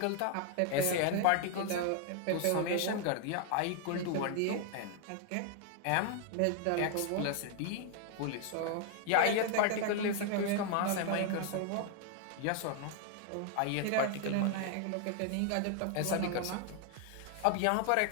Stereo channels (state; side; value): different; both; correlation 0.00